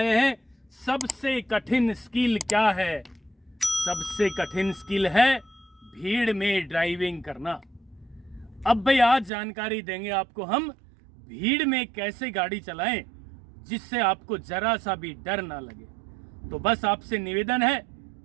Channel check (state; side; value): drops out; left; at 9.3 s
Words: हैं सबसे कठिन स्किल क्या है। सबसे कठिन स्किल है भीड़ में ड्राइविंग करना। अब भाई आज जानकारी देंगे आपको हम भीड़ में कैसे गाड़ी चलाएं जिससे आपको जरा सा भी डर ना लगे। तो बस आपसे निवेदन है